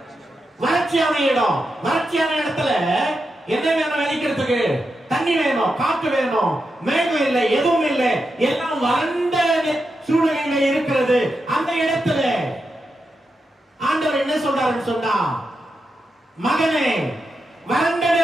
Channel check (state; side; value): normal; both; correlation 0.87